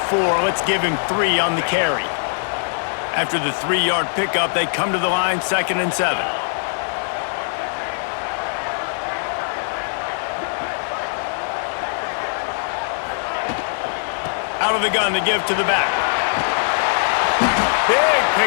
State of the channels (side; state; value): right; silent; 65 dB below the other